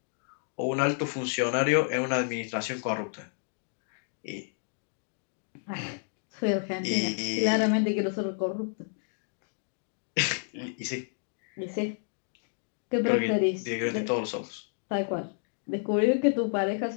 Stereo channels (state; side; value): silent; right; 57 dB below the other